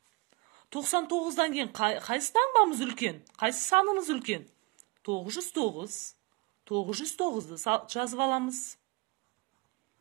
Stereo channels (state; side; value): quieter; left; 27.4 dB